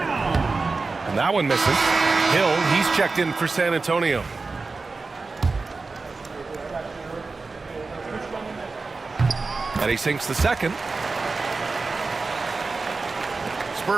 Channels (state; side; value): quieter; left; 4.0 dB